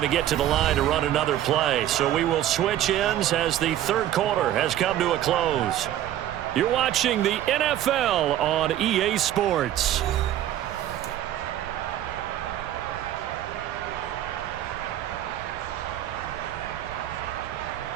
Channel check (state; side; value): quieter; left; 12.3 dB